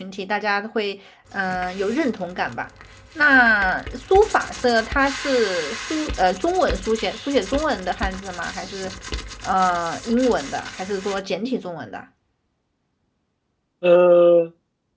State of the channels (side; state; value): both; identical; correlation 1.00